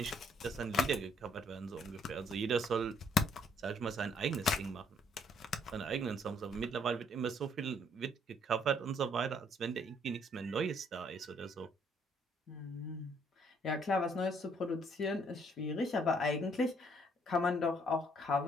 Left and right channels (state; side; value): normal; both; correlation 0.66